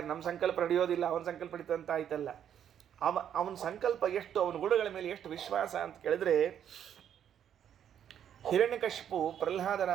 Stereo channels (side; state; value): left; quieter; 9.4 dB